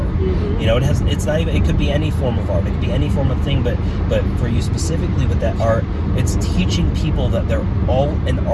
You know, it's not even, it could be any form of art, it could be any form of thing, but for you specifically with that art, it's teaching people that they're all an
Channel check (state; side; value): identical; both; correlation 1.00